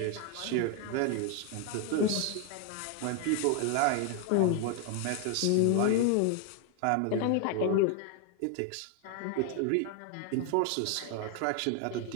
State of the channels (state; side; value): different; both; correlation 0.01